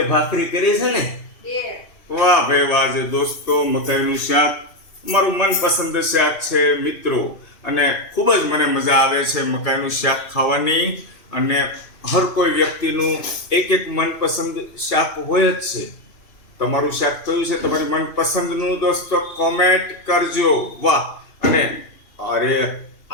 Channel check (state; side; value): late; right; 2.8 ms